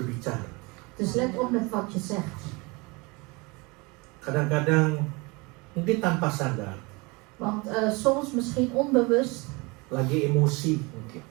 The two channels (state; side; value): quieter; left; 26.6 dB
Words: Dus let op met wat je zegt. Kadang-kadang mungkin tanpa sadar, Want soms misschien onbewust, lagi emosi mungkin.